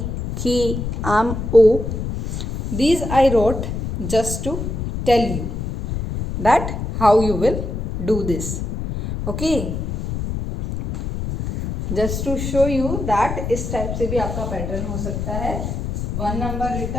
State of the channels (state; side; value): noise; left; rumble, 4 dB below the sound